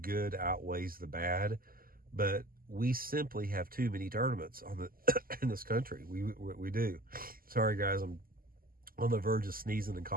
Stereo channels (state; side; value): late; left; 0.42 ms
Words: outweighs the bad, but we simply have too many tournaments in this country. We do. Sorry guys, I'm on the verge of sneezing and